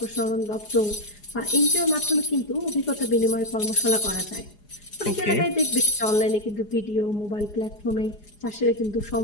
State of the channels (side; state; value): right; late; 4.8 ms